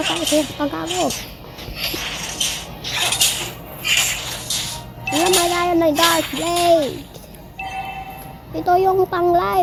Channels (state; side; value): identical; both; correlation 1.00